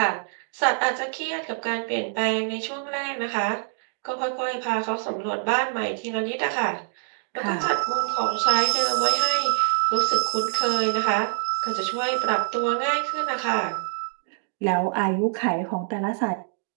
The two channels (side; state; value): left; silent; digital silence